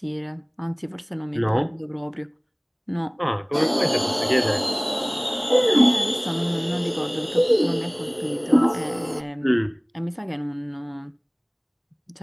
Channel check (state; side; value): identical; both; correlation 1.00